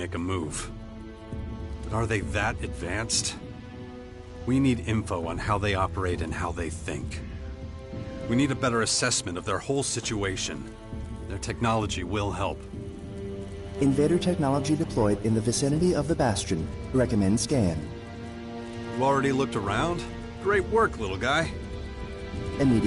a move. But are they that advanced? We need info on how they operate and how they think. We need a better assessment of their whole situation. Their technology will help. Invader technology deployed in the vicinity of the Bastion. Recommend scan. You already looked around? Great work, little guy.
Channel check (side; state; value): both; identical; correlation 1.00